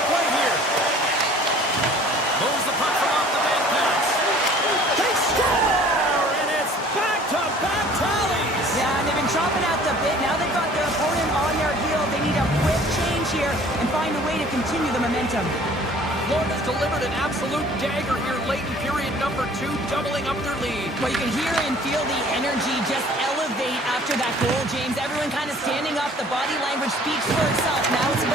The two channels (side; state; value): both; normal; correlation 0.51